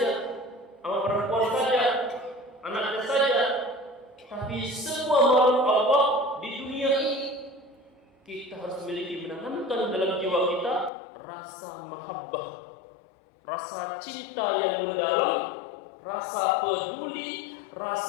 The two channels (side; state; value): right; drops out; at 10.9 s